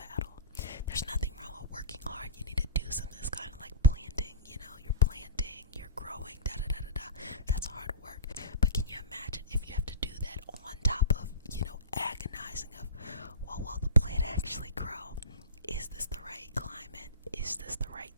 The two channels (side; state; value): both; inverted; correlation -0.31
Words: There's nothing wrong with working hard. You need to do something. That's kind of like planting. You know, you're planting, you're growing, da da da da da. That's hard work. But can you imagine if you have to do that on top of, you know, agonizing of, well, will the plant actually grow? Is this the right climate? Is this